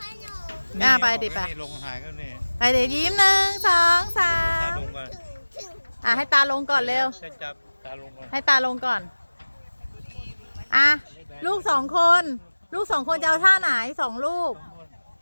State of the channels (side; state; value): both; inverted; correlation -1.00